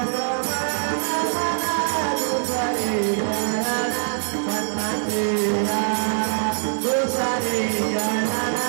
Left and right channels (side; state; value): left; silent; digital silence